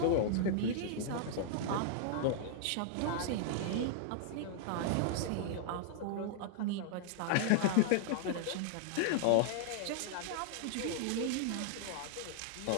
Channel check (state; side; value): different; both; correlation -0.01